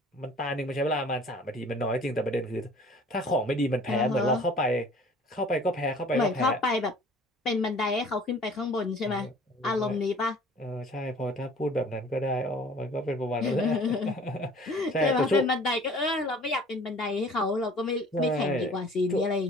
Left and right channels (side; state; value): both; normal; correlation 0.49